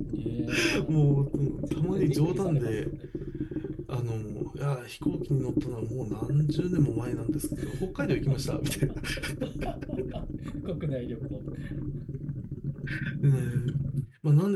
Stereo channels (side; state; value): both; identical; correlation 1.00